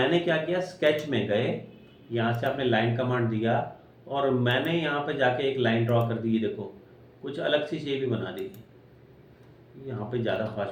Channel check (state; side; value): identical; both; correlation 1.00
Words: क्या किया, स्केच में गए, यहाँ से आपने लाइन कमांड दिया और मैंने यहाँ पे जाके एक लाइन ड्रॉ कर दी। देखो कुछ अलग सी शेप ही बना दी। यहाँ पे ज़्यादा